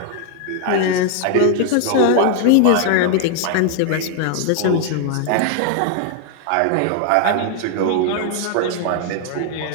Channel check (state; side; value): different; both; correlation 0.00